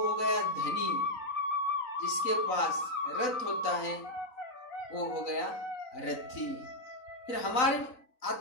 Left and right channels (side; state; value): right; late; 3.9 ms